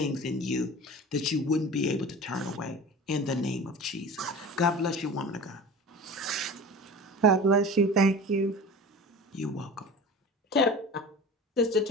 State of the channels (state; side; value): normal; both; correlation 0.36